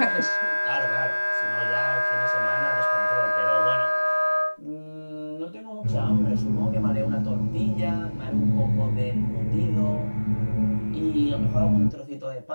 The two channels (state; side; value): inverted; both; correlation -1.00